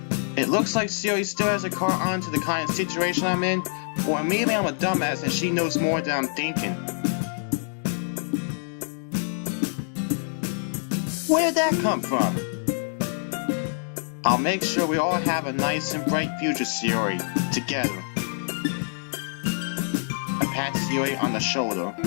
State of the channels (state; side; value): silent; right; digital silence